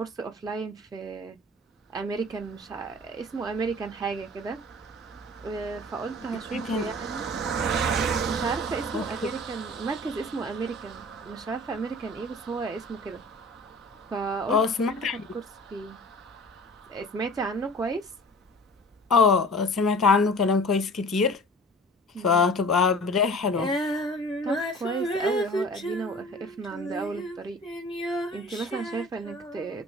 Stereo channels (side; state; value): both; normal; correlation 0.43